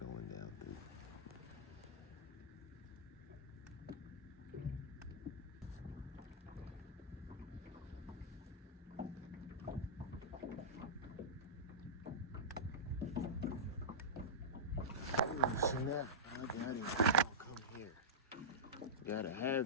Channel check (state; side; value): normal; both; correlation -0.14